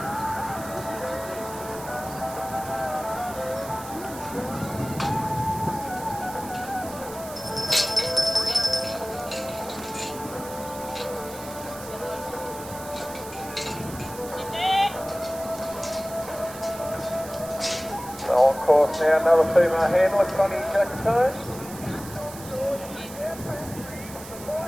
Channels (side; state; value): right; noise; hiss, 14 dB below the sound